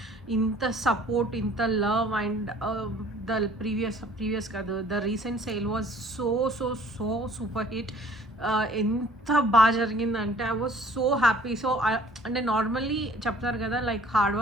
ఇంత సపోర్ట్, ఇంత లవ్ అండ్ ద ప్రీవియస్ కాదు, the recent sale was so super hit. ఎంత బాగా జరిగిందంటే I was so happy. So అంటే normally చెప్తారు కదా, like hard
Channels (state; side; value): normal; both; correlation 0.54